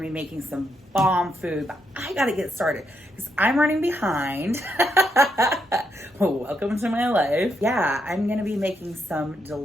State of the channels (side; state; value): both; normal; correlation 0.79